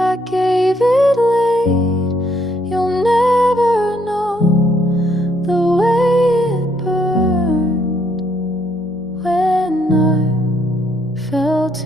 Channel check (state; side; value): normal; both; correlation 0.71